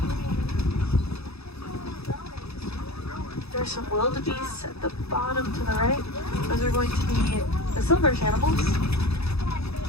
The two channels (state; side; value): late; right; 0.78 ms